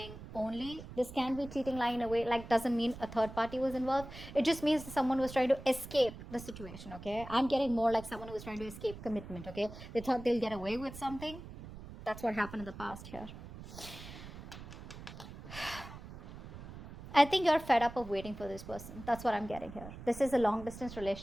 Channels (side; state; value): right; noise; rumble, 13 dB below the sound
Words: only. This can be cheating, lying in a way, like doesn't mean a third party was involved. It just means that someone was trying to escape the situation, okay. I'm getting more like someone who was trying to escape commitment, okay. They thought they'll get away with something. That's what happened in the past here. I think you're fed up of waiting for this person. That's what I'm getting here. This is a long distance